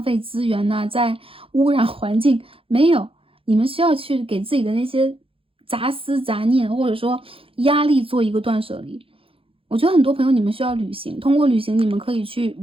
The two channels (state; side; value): late; left; 0.27 ms